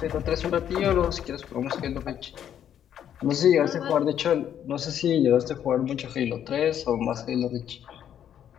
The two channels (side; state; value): right; quieter; 9.8 dB